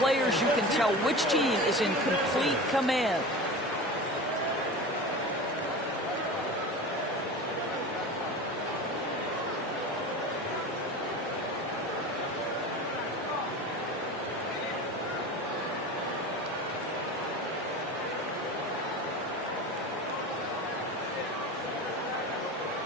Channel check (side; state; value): both; normal; correlation 0.32